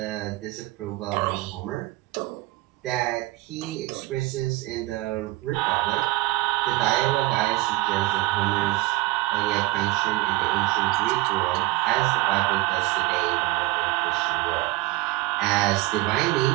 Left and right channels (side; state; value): left; quieter; 19.8 dB